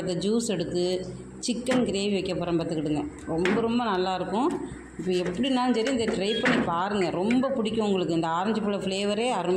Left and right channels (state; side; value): identical; both; correlation 1.00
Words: ஜூஸ் எடுத்து சிக்கன் கிரேவி வைக்க போகிறேன் பார்த்துக்கிடுங்க. ரொம்ப ரொம்ப நல்லாயிருக்கும். இப்போ எப்படினாலும் சரி இந்த ட்ரை பண்ணி பாருங்கள். ரொம்ப பிடிக்கும் உங்களுக்கு. இந்த ஆரஞ்சு பழ ஃப்ளேவரே